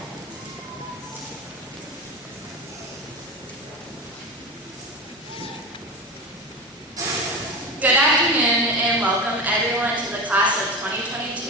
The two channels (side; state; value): both; normal; correlation 0.26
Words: Good afternoon and welcome everyone to the class of